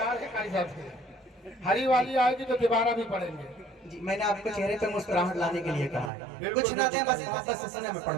कारी साहब से हरी वाली आएगी तो तिवारा भी पढ़ेंगे जी। मैंने आपको चेहरे पे मुस्कुराहट लाने के लिए कहा है, कुछ ना दें बस मोहब्बत से सुने, मैं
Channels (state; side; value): drops out; left; at 6.1 s